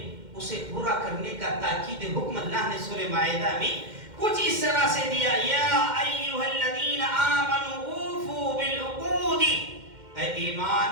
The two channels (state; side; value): late; left; 2.1 ms